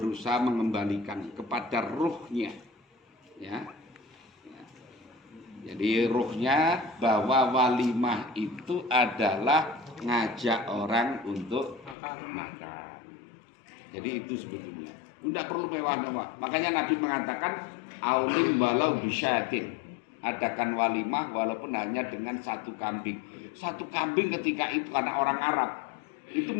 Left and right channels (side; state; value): right; drops out; at 12.0 s